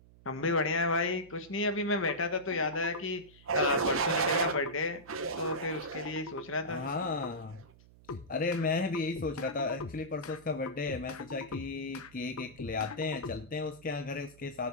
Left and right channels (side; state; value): right; noise; hum, 24 dB below the sound